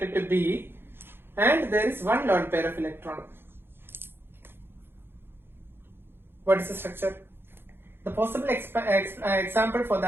to B, and there is one lone pair of electron. What is the structure? The possible example for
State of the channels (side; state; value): left; late; 0.10 ms